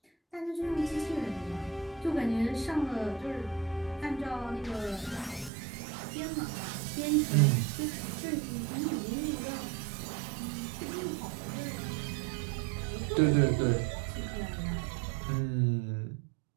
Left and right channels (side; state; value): left; drops out; at 5.5 s